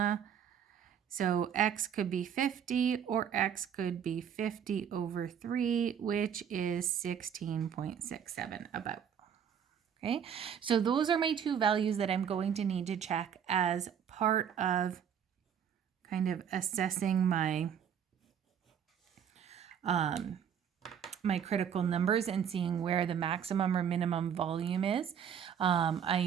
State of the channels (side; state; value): left; quieter; 8.4 dB